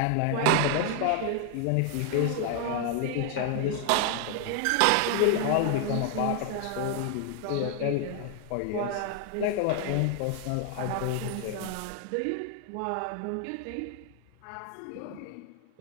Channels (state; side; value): different; both; correlation 0.00